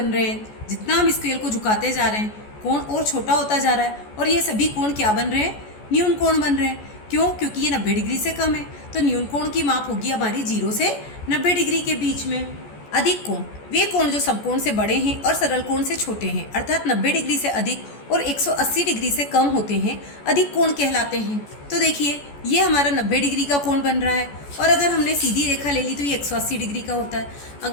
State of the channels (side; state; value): right; late; 14 ms